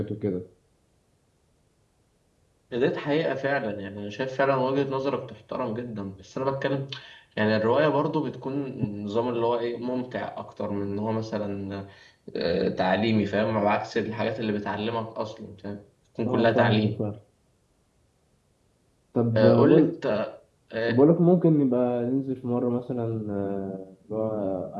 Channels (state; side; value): identical; both; correlation 1.00